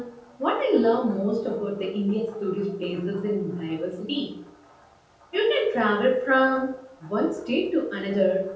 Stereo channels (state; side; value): identical; both; correlation 1.00